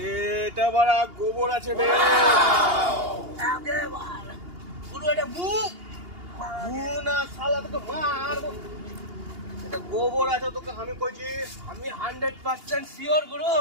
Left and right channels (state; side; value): late; left; 2.8 ms